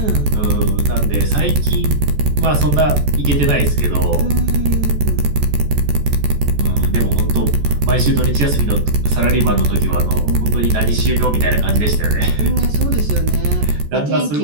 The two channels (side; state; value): left; late; 14 ms